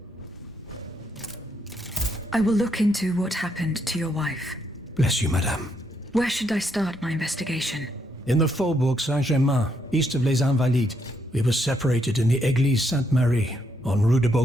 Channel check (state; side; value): normal; both; correlation 0.76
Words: I will look into what happened to your wife. Bless you, madame. Where should I start my investigation? In the Faubourg Saint-Germain, east of Les Invalides. We were separated in the Église Sainte-Marie, on Rue de